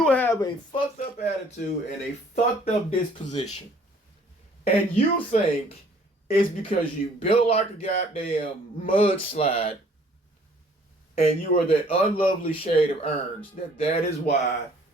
have a fucked up attitude and a fucked up disposition. And you think it's because you built like a goddamn mudslide and you are that unlovely shade of orange that is why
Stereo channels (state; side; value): normal; both; correlation 0.58